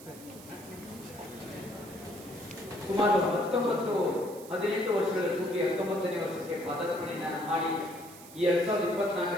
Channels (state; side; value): noise; right; hiss, 18 dB below the sound